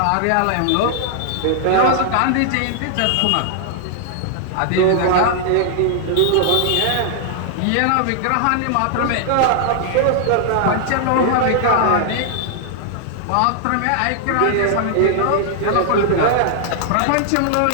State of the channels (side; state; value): both; different; correlation -0.01